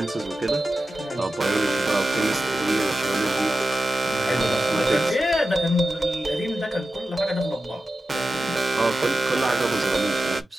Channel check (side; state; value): both; normal; correlation 0.92